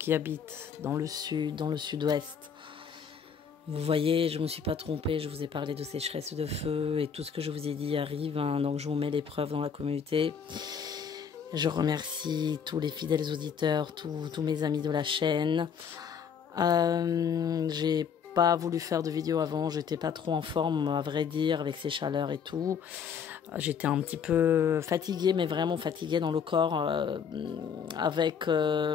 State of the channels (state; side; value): quieter; right; 7.1 dB